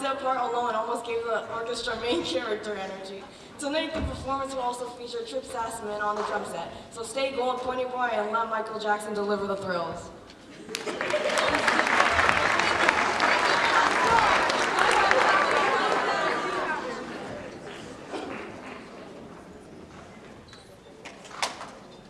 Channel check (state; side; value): identical; both; correlation 1.00